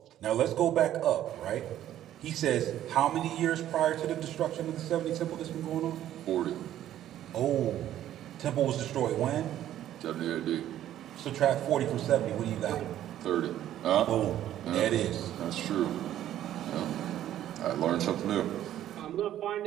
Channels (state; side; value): quieter; left; 12.1 dB